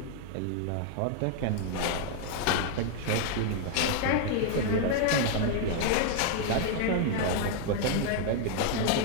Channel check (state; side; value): different; both; correlation 0.00